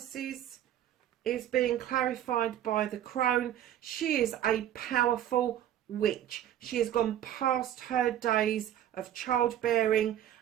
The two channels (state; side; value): quieter; left; 11.3 dB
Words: is being clarified by the crone. She is a powerful witch. She has gone past her days of childbearing,